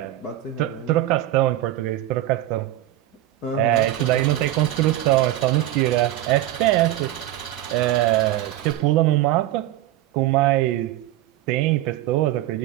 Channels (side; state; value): left; quieter; 14.3 dB